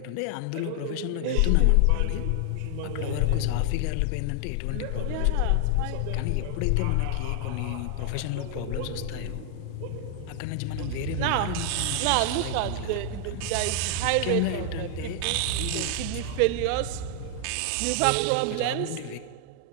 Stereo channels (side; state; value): both; different; correlation 0.00